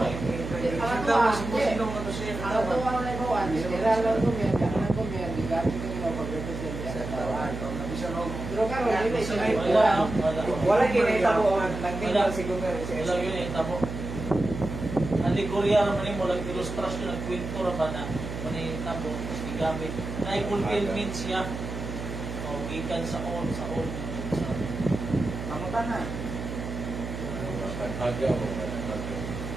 Kita mo si Pusino nga to siya. ang ito ang naibawan, kailangan lang kumyan, kailangan kumyan, di gamit ko nila pag-represent sa tawaan. Pero karon dili siya. Wala. Wala ginahitabo ang nagtinggal si Gomer. Wala yun eh, tabo. Alegorya naman mo, lang ilustrasyon, nagkwento naman na manitabo, gamit. Na-fulfillment siya. O, gikan sa all. Mamutan na. Tanghaga ba tanghaga?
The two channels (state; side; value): noise; right; hum, 7 dB below the sound